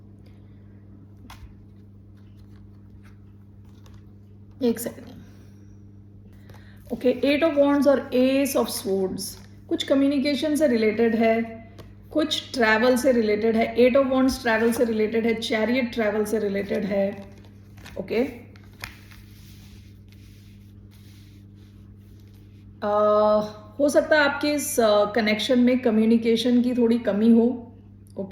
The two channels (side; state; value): both; identical; correlation 1.00